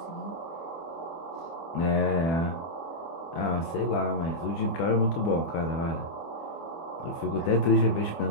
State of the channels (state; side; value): late; right; 24 ms